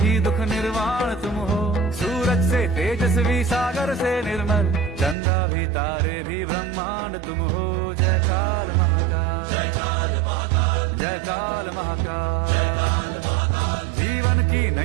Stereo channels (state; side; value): drops out; left; at 5.2 s